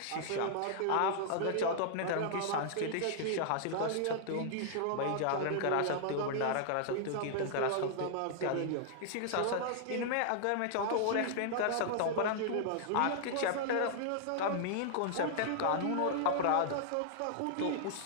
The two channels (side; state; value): both; different; correlation -0.01